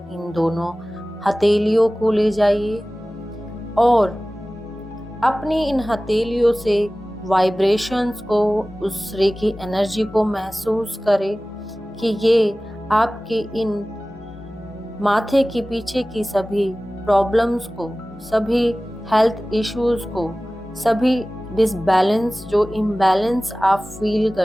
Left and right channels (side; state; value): both; normal; correlation 0.97